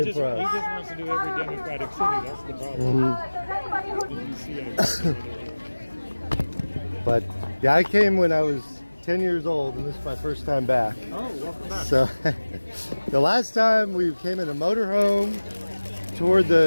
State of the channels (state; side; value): inverted; both; correlation -1.00